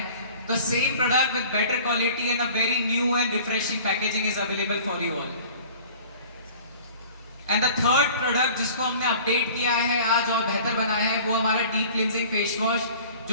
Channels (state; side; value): inverted; both; correlation -0.46